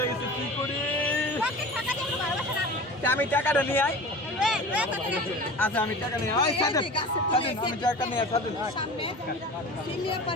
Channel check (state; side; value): normal; both; correlation 0.36